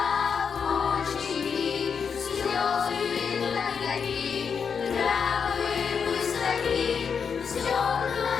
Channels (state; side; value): quieter; right; 6.4 dB